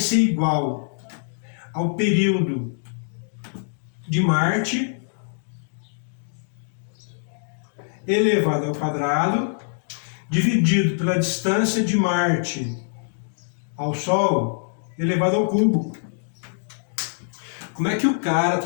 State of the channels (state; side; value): silent; right; digital silence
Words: igual ao período de Marte elevado ao quadrado dividido pela distância de Marte ao Sol elevado ao cubo. Como é que o cara,